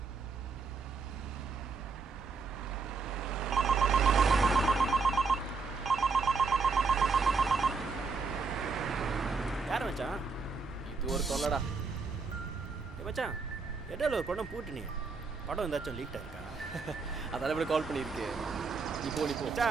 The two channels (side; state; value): left; quieter; 4.6 dB